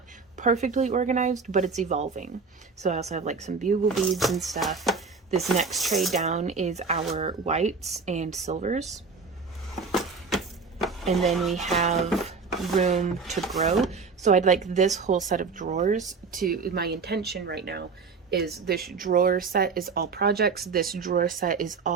perfectly organized, but it's evolving. So I also have like some bugle beads and stuff. This next tray down is our whites and silvers, and then we have room to grow. So I'd like this whole set of drawers to, my intention right now is this drawer set is all projects, this drawer set is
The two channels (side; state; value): left; quieter; 4.9 dB